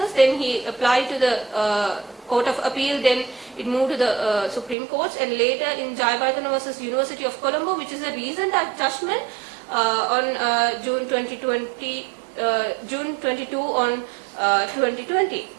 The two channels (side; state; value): left; drops out; at 4.8 s